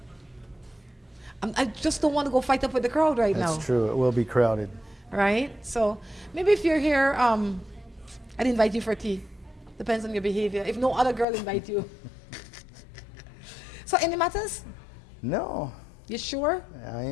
I just don't want to go fight up with the crowd right now. That's true. It will be crowded. Right? So maybe if you're here, I'd invite you for tea. Depends on your behavior. If no other girl invite you. So any matters? No. You sure? I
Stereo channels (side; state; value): right; drops out; at 11.2 s